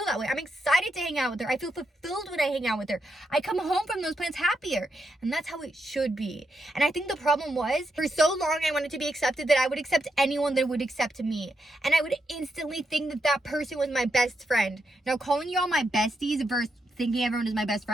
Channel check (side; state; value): both; normal; correlation 0.82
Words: that way. I'm excited to hang out with her. I feel fulfilled when I hang out with her. I come home from those plans happier, and that's how it should be. And I think the problem was, for so long I wanted to be accepted that I would accept anyone that would accept me. And I would instantly think that that person was my best friend. Now, calling y'all my besties versus thinking everyone is my best